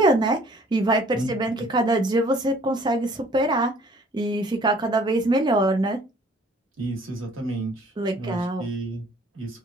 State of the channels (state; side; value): normal; both; correlation 0.56